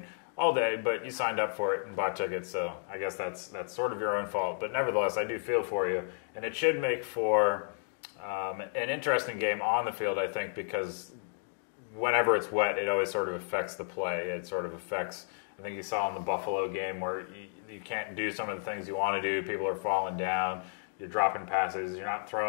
all day, but you signed up for it and bought tickets, so I guess that's sort of your own fault. But nevertheless, I do feel for you, and it should make for an interesting game on the field, I think, because whenever it's wet, it always sort of affects the play. It sort of affects, I think you saw in the Buffalo game where you can't do some of the things you want to do. People are falling down. You're dropping passes. You're not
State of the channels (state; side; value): silent; right; digital silence